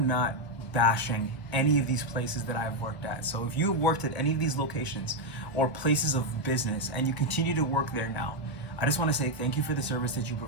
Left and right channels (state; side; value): late; right; 1.0 ms